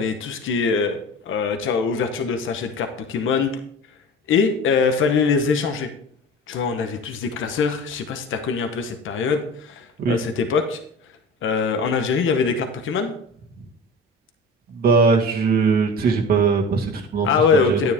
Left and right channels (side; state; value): both; normal; correlation 0.35